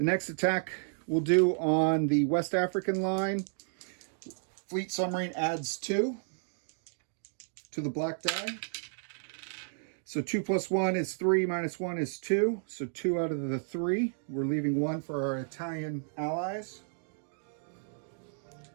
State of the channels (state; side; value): silent; left; digital silence